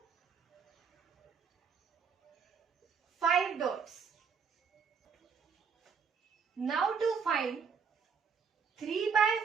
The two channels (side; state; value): left; quieter; 6.0 dB